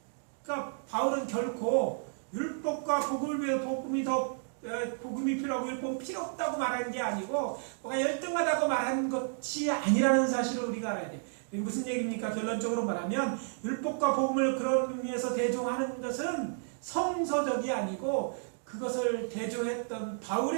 그러니까 바울은 결코 율법과 복음이 필요하고 율법은 필요 없다고 말하는 게 아니고 뭐가 열등하다고 말하는 것이 아니라는 사실을 우리가 알아야 돼요. 이게 무슨 얘기입니까? 결론적으로 말하면 율법과 복음을 그런 의미에서 대조하는 것은 성서적이 아니고 그것을 대조했던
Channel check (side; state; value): left; silent; digital silence